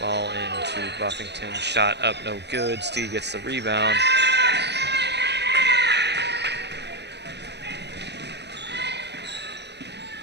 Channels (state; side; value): late; left; 0.50 ms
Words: into Buffington, shot up, no good. Steve gets the rebound.